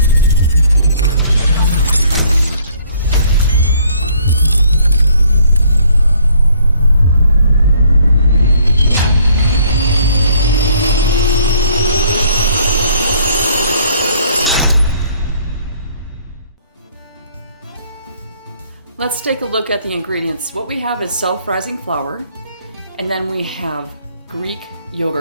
Let's take a look at the ingredients. What we have is self-rising flour, and then we have Greek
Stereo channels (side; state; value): both; inverted; correlation -0.61